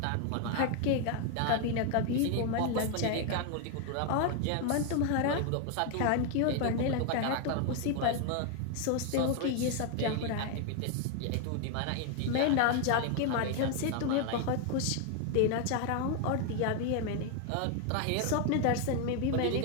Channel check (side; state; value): both; different; correlation 0.00